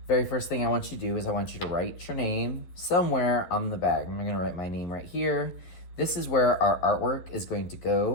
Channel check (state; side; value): late; right; 11 ms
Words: Very first thing I want you to do is I want you to write your name somewhere on the bag. I'm gonna write my name right here. This is where our artwork is going to